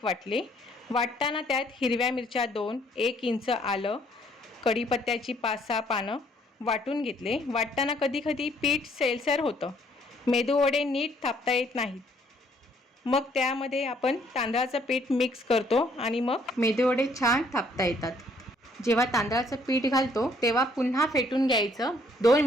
वाटले। वाटताना त्यात हिरव्या मिरच्या 2, 1 इंच आलं, कढीपत्त्याची 5-6 पानं वाटून घेतले। वाटताना कधी कधी पीठ सैलसर होतं, मेदूवडे नीट थापता येत नाहीत, मग त्यामध्ये आपण तांदळाचं पीठ मिक्स करतो आणि मग मेदूवडे छान थापता येतात। जेव्हा तांदळाचं पीठ घालतो तेव्हा पुन्हा फेटून घ्यायचं 2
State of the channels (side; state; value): both; normal; correlation 0.65